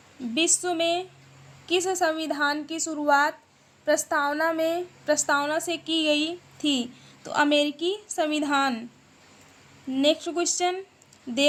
विश्व में किस संविधान की शुरुआत प्रस्तावना से की गई थी? तो अमेरिकी संविधान। नेक्स्ट क्वेश्चन,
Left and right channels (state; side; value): identical; both; correlation 1.00